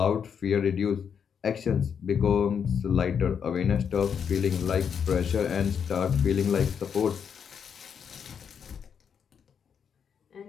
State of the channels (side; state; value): right; quieter; 7.3 dB